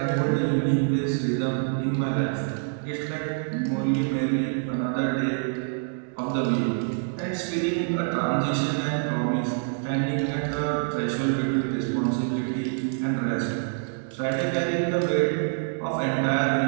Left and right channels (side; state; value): left; silent; digital silence